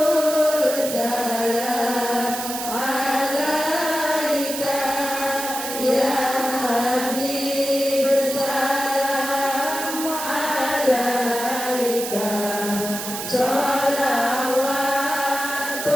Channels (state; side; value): noise; right; hiss, 6 dB below the sound